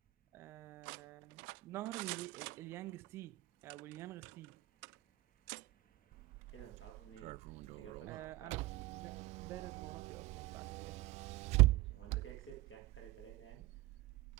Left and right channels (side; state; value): left; quieter; 19.8 dB